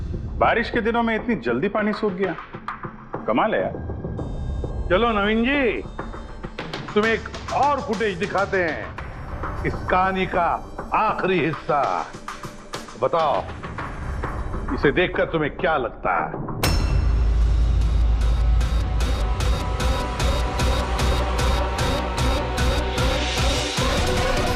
बारिश के दिनों में इतनी जल्दी पानी सूख गया, कमाल है यार। चलो नवीन जी, तुम्हें एक और फुटेज दिखाते हैं, इस कहानी का आखिरी हिस्सा। बताओ इसे देखकर तुम्हें क्या लगता है?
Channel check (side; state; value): both; identical; correlation 1.00